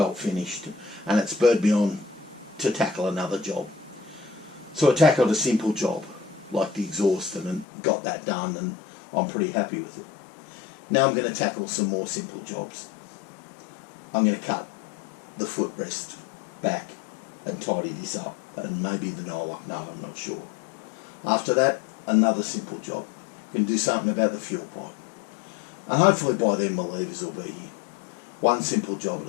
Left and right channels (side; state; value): right; drops out; at 7.7 s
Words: finished and it spurred me on to tackle another job. So I tackled a simple job like the exhaust and got that done, and I'm pretty happy with it. Now I'm going to tackle some more simple jobs. I'm going to cut the footrest back and tidy this up, and maybe the Nylock nut, I'm not sure. After that, another simple job. Going to do something about the fuel pipe. And hopefully by then my levers will be here. One simple job at